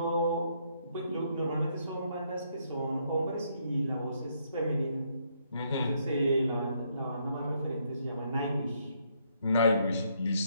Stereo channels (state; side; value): inverted; both; correlation -0.73